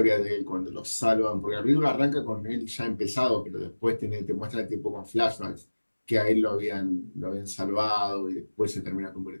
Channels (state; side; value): inverted; both; correlation -1.00